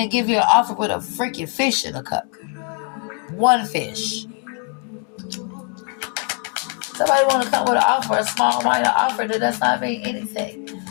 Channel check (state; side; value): quieter; right; 39.8 dB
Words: give you an offer with a freaking fish in a cup. One fish. Somebody want to come with an offer, a small minor offer that does not mean anything.